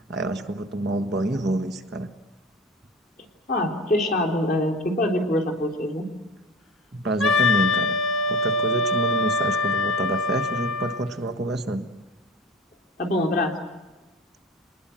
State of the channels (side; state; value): both; normal; correlation 0.36